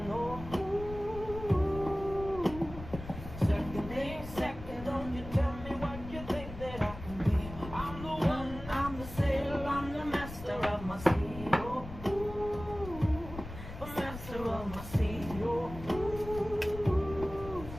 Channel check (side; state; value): left; noise; rumble, 12 dB below the sound